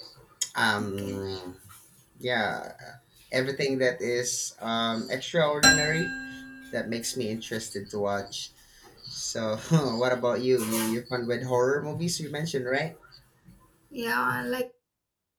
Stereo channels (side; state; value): both; identical; correlation 1.00